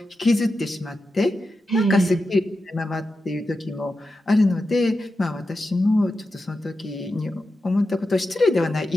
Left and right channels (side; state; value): both; normal; correlation 0.90